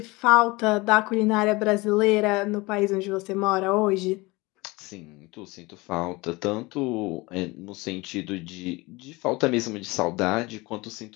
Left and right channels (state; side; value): quieter; right; 23.4 dB